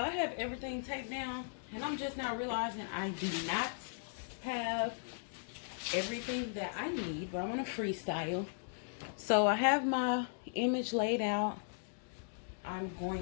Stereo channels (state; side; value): silent; right; digital silence